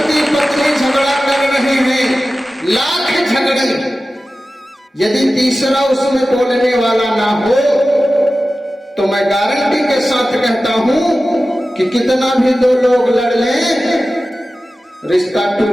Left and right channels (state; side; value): normal; both; correlation 0.95